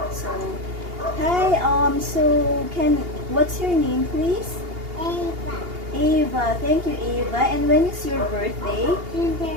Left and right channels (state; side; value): late; left; 2.8 ms